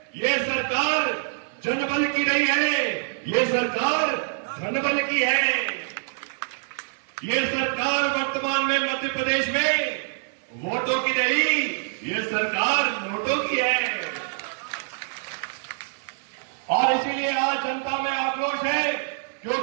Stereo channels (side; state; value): left; silent; digital silence